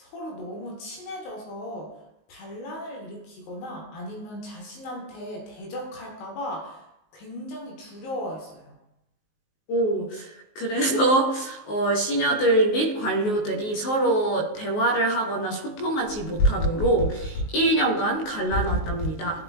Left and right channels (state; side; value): late; right; 19 ms